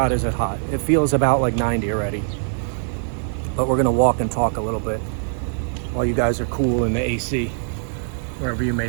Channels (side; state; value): left; silent; digital silence